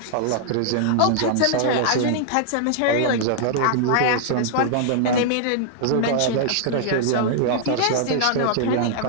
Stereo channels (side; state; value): both; different; correlation -0.01